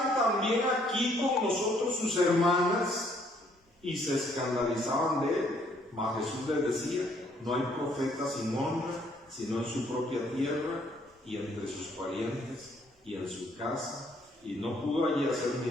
también aquí con nosotros sus hermanas? Y se escandalizaban de él. Mas Jesús les decía: no hay profeta sin honra, sino en su propia tierra y entre sus parientes y en su casa. Y no pudo allí hacer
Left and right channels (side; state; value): both; normal; correlation 0.66